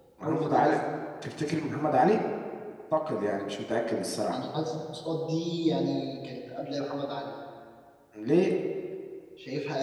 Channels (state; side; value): identical; both; correlation 1.00